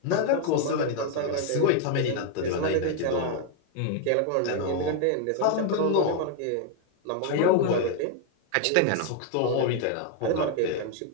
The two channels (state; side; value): different; both; correlation 0.00